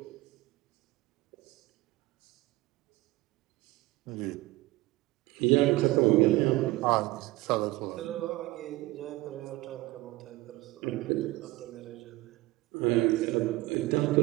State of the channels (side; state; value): left; quieter; 19.3 dB